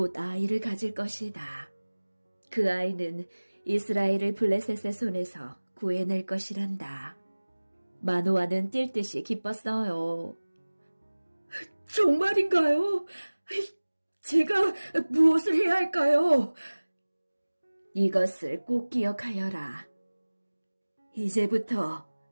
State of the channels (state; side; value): inverted; both; correlation -1.00